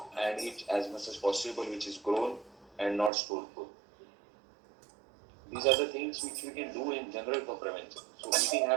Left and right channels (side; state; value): left; drops out; at 3.1 s